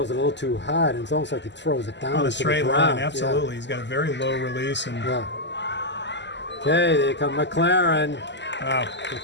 it a little too hard, and it's almost like he throws it down On a into straight the line, ground. absolutely. He's got a very low release. And Yeah. Okay, there come McLaren. wow.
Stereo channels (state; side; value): late; right; 0.51 ms